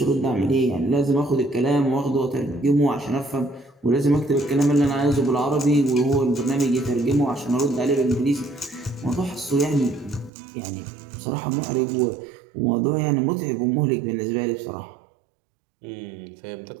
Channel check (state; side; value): drops out; left; at 10.3 s